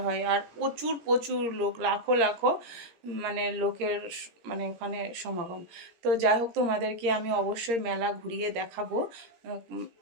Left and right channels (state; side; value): late; left; 17 ms